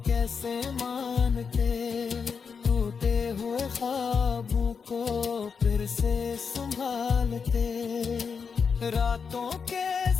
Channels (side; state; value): right; quieter; 5.9 dB